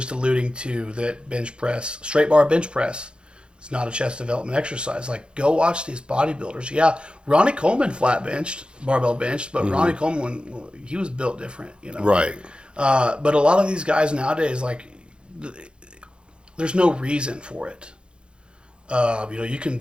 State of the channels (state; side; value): late; left; 0.054 ms